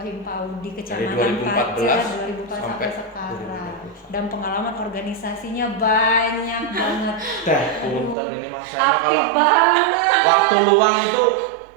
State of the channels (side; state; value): left; drops out; at 8.2 s